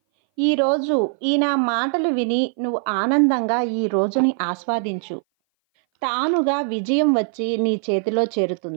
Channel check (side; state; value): left; silent; 59 dB below the other